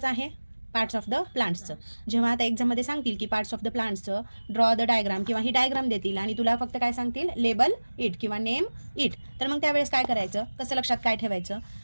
आहे? पार्ट्स ऑफ द प्लांट्सचं. जेव्हा आता एक्झाममध्ये सांगतील की पार्ट्स ऑफ द प्लांट्सचं ड्रॉ द डायग्राम किंवा ही डायग्राम देतील आणि तुला फक्त काय सांगतील, लेबल इट किंवा नेम इट, तर मग त्यावेळेस काय करायचं, कसं लक्षात काय ठेवायचं?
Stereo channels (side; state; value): both; inverted; correlation -1.00